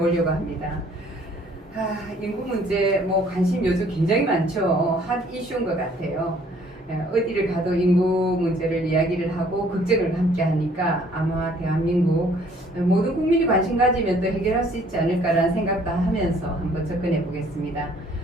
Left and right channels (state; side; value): normal; both; correlation 0.59